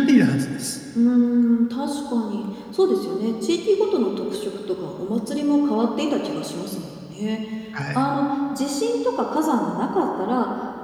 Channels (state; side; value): identical; both; correlation 1.00